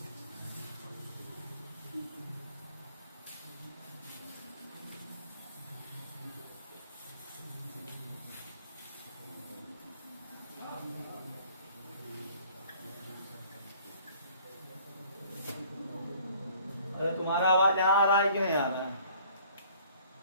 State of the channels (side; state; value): both; inverted; correlation -0.55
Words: अरे तुम्हारा आवाज यहाँ आ रहा है क्यों नहीं आ रहा है।